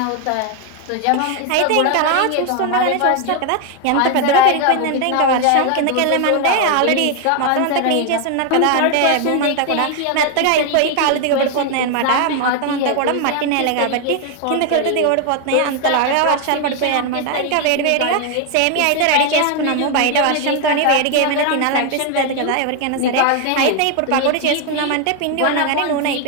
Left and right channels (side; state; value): both; different; correlation 0.01